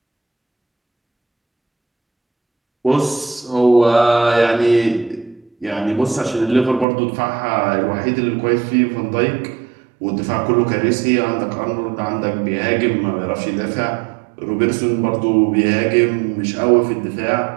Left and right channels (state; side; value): drops out; left; at 6.9 s